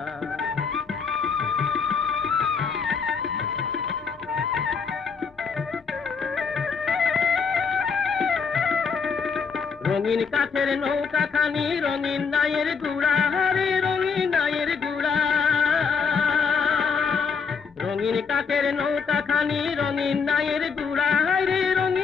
রঙিন কাঠের নৌকা খানি রঙিন নায়ের গুড়া, রে রঙিন নায়ের গুড়া। রঙিন কাঠের নৌকা খানি রঙিন নায়ের গুড়া, রে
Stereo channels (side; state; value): right; quieter; 5.6 dB